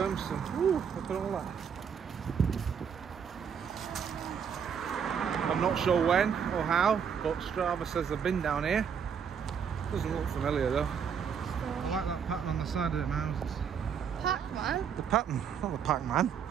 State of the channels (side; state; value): left; quieter; 7.3 dB